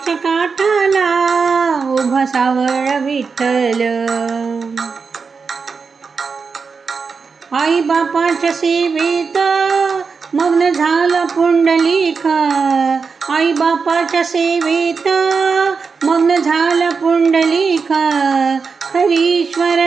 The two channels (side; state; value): left; quieter; 5.1 dB